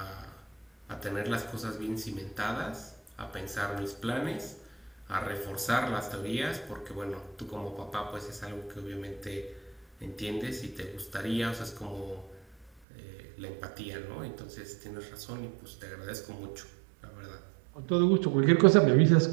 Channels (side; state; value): left; drops out; at 12.7 s